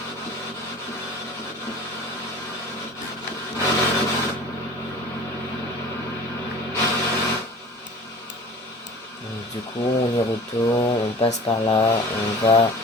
Donc, du coup, on y retourne, on passe par là, on va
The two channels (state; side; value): normal; both; correlation 0.42